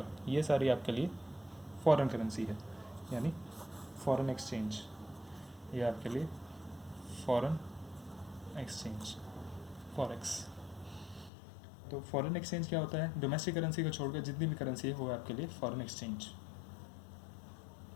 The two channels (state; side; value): drops out; right; at 11.3 s